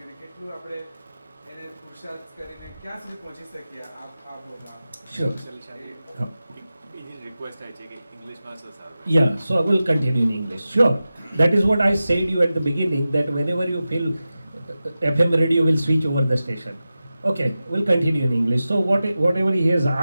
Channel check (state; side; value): inverted; both; correlation -0.94